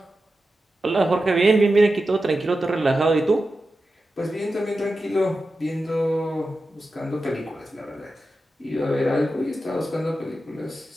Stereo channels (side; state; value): both; normal; correlation 0.91